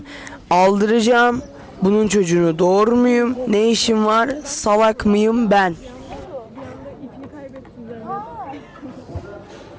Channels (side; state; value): both; identical; correlation 1.00